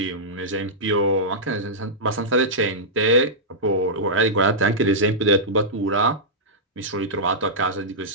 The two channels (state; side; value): normal; both; correlation -0.12